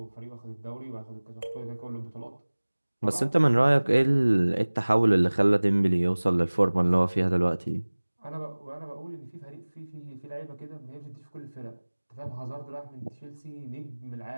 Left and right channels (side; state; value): both; inverted; correlation -1.00